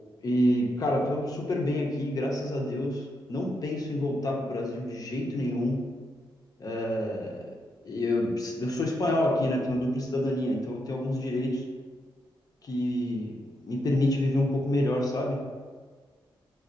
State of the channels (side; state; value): both; normal; correlation 0.82